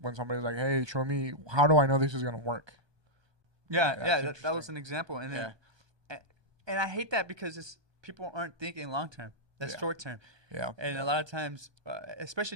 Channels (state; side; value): late; left; 1.2 ms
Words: somebody's like, "Hey, show me. How do I know this is gonna work?" Yeah, That's that was an example, and then, and I hate that because people aren't thinking long term. That's Yeah. short term. Yeah. And a lot of times, especially